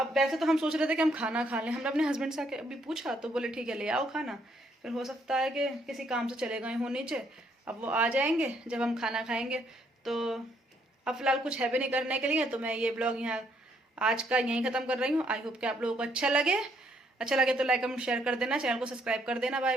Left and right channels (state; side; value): normal; both; correlation 0.70